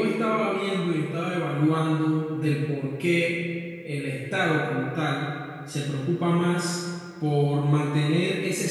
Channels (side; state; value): both; identical; correlation 1.00